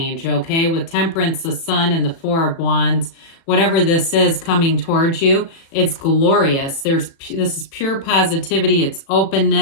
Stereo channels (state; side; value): late; right; 36 ms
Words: okay? With Temperance, the Sun, and the Four of Wands. Whatever this is coming towards you, it's glorious. This is pure positivity. It's